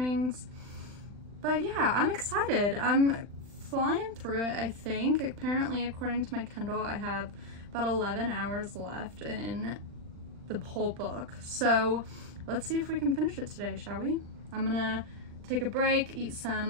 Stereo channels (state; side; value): late; left; 39 ms